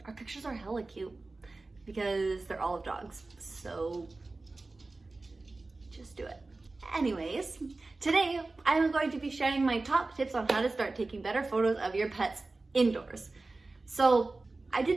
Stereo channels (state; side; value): quieter; left; 3.3 dB